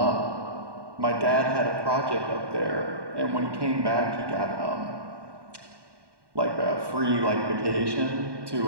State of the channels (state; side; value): late; left; 1.2 ms